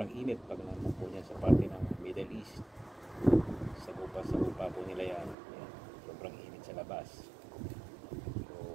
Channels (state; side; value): drops out; left; at 5.4 s